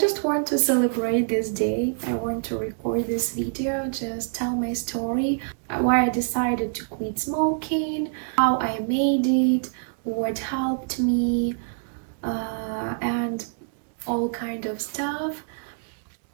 want to celebrate this day. I want to record this video, just tell my story, why I decided to quit smoking, how I made it, what helped me, and all kind of stuff.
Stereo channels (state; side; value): silent; left; digital silence